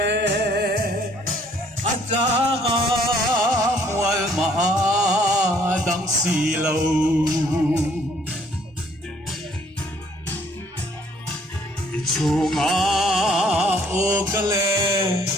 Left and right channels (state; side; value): normal; both; correlation 0.62